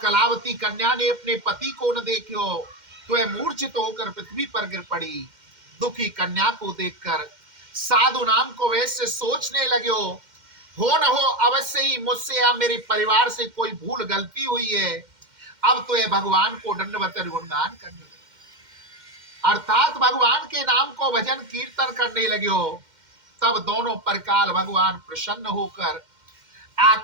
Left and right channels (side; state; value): left; late; 2.1 ms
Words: कन्या ने अपने पति को न देखो तो वह मूर्छित होकर पृथ्वी पर गिर पड़ी। दुखी कन्या को देखकर साधु नाम को वैसे सोचने लगे, हो न हो अवश्य ही मुझसे या मेरे परिवार से कोई भूल गलती हुई है, अब तो यह भगवान को दंडवत गुणगान करने लगे, अर्थात भगवान के नाम को भजन कीर्तन करने लगे। तब दोनों परकाल भगवान प्रसन्न होकर